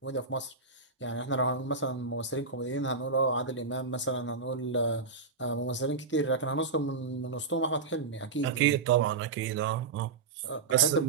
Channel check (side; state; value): left; quieter; 4.5 dB